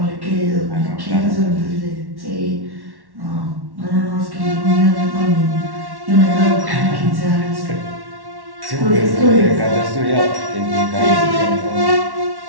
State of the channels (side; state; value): left; late; 1.1 ms